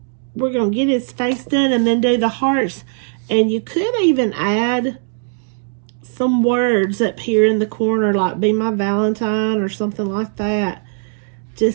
we're going to get his face done and then do the hearts. And you could even add some words up here in the corner, like "Be my Valentine" or something like that,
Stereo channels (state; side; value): silent; left; 67 dB below the other